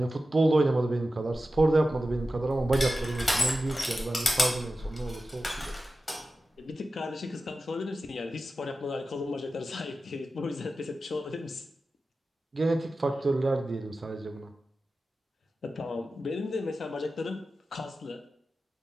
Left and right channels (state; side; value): normal; both; correlation 0.93